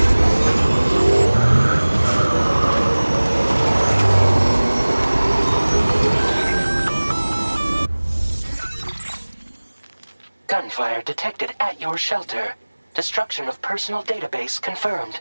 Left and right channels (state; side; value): inverted; both; correlation -1.00